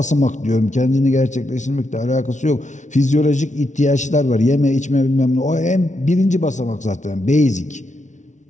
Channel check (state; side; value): late; right; 0.36 ms